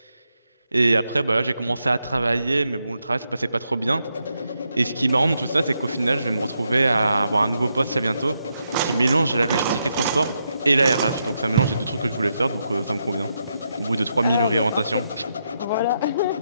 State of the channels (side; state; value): both; inverted; correlation -0.82